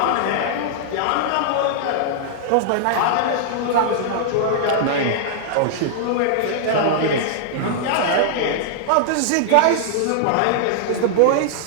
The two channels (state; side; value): different; both; correlation -0.01